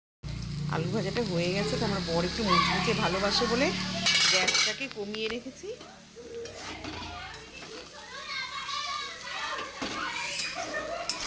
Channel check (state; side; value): identical; both; correlation 1.00